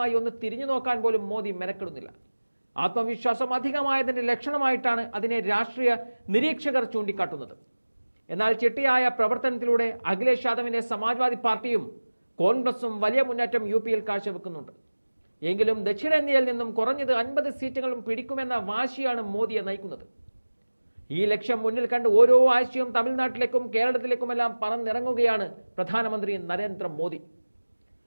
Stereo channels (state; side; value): inverted; both; correlation -1.00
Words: ഒന്ന് തിരിഞ്ഞു നോക്കാൻ പോലും മോദി മെനക്കെടുന്നില്ല. ആത്മവിശ്വാസം അധികമായതിന്റെ ലക്ഷണമായിട്ടാണ് അതിനെ രാഷ്ട്രീയ നിരീക്ഷകർ ചൂണ്ടിക്കാട്ടുന്നത്. എന്നാൽ ചിട്ടയായ പ്രവർത്തനത്തിലൂടെ അഖിലേഷ് യാദവിന്റെ സമാജ്വാദി പാർട്ടിയും കോൺഗ്രസും വലിയ മുന്നേറ്റം യു.പിയിൽ കാഴ്ചവെക്കുന്നുണ്ട്. എങ്കിലും ദക്ഷിണേന്ത്യയിൽ നിന്നും കുറഞ്ഞത് 50 സീറ്റുകളും പിടിക്കുമെന്ന വാശിയാണ് മോദിയെ നയിക്കുന്നത്. ഈ ലക്ഷ്യം മുന്നിൽ കണ്ട് ഓരോ ആഴ്ചയും തമിഴ്നാട്ടിലേക്കും കേരളത്തിലേക്കുമെല്ലാം പറന്നിറങ്ങുകയാണ് പ്രധാനമന്ത്രി നരേന്ദ്രമോദി.